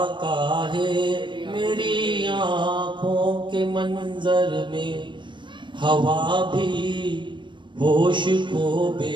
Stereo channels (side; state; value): left; late; 0.23 ms